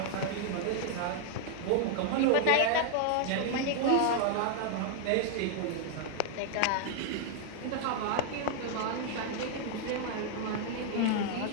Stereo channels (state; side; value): different; both; correlation 0.00